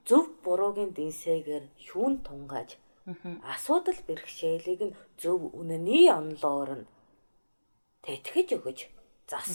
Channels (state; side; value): inverted; both; correlation -1.00